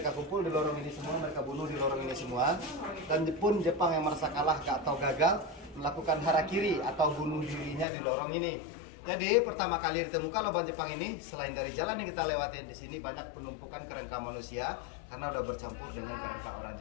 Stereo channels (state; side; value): drops out; right; at 7.9 s